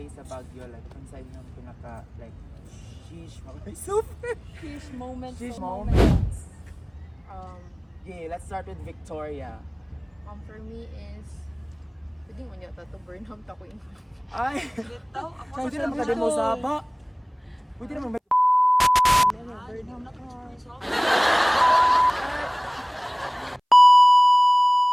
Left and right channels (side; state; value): both; identical; correlation 1.00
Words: sa Baguio, like kung sa inyong pinaka like sheesh super Fish moments. sheesh moments. Yeah, let's start with Victoria. For me is pwede mo niya to Burnham ta ko in. Ay, pwede naman ka din mo saba. Pwede naman